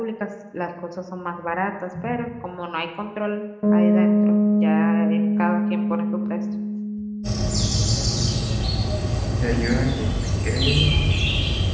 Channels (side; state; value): both; identical; correlation 1.00